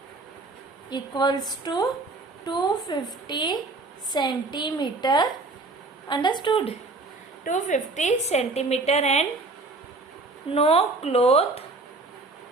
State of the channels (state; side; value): quieter; left; 3.4 dB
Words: equals to 250 centimeter. Understood? 250 centimeter and no cloth